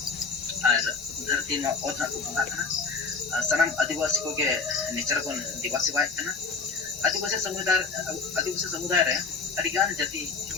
धरती में और ना को bahkan tanam आदिवासी को के nature को दिवासी बात kan आदिवासी समुदाय रे अडिगान जाति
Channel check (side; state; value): right; quieter; 4.6 dB